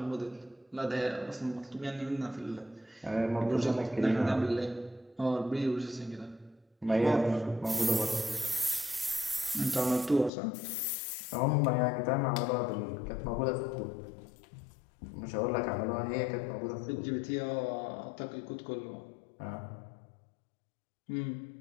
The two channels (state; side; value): drops out; right; at 10.3 s